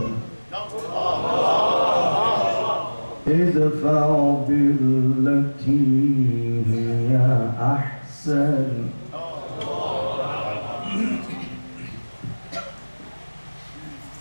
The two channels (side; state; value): both; inverted; correlation -1.00